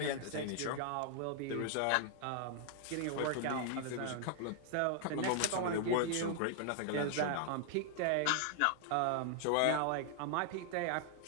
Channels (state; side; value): different; both; correlation 0.00